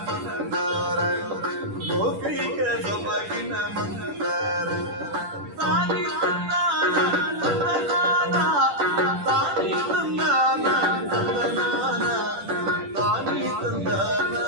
ಮಂದಾರ ಲೋಕೈಕ ಸೊಬಗಿನ ಮಂದಾರ ತಾನಿ ತಂದಾನ ತಂದನಾನ ತಾನಿ ತಂದಾನ ತಂದನಾನ ತಾನಿ ತಂದಾನ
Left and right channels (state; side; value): late; left; 10 ms